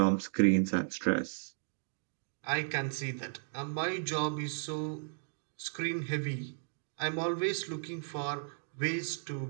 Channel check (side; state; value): left; silent; digital silence